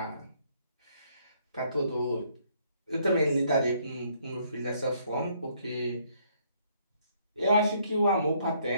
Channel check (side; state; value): both; inverted; correlation -0.67